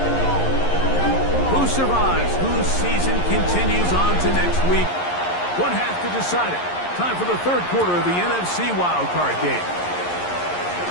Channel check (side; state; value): right; late; 11 ms